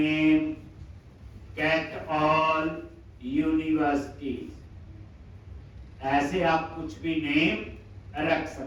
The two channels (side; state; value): both; identical; correlation 1.00